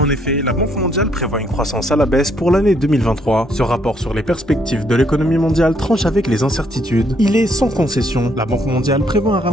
En effet, la Banque mondiale prévoit une croissance à la baisse pour l'année 2023. Ce rapport sur les perspectives de l'économie mondiale tranche avec les incertitudes. Il est sans concession. La Banque mondiale prévoit un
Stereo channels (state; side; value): normal; both; correlation 0.70